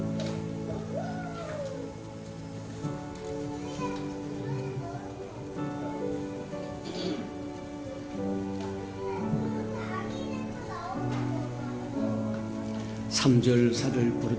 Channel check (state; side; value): identical; both; correlation 1.00